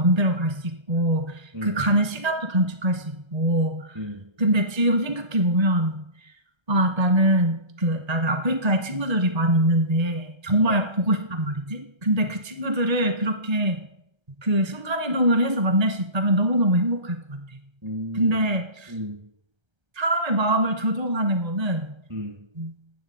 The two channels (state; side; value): late; left; 1.3 ms